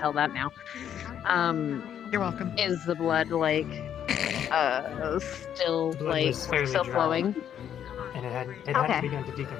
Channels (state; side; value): quieter; right; 9.5 dB